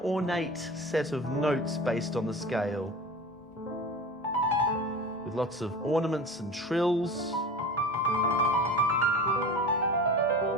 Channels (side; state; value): both; normal; correlation 0.33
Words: set of notes based on the scale, with lots of ornaments and trills.